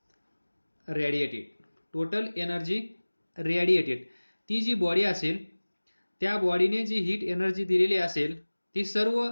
radiated, ती जी बॉडी असेल त्या बॉडीने जी हीट एनर्जी दिलेली असेल ती सर्व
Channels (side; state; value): both; inverted; correlation -1.00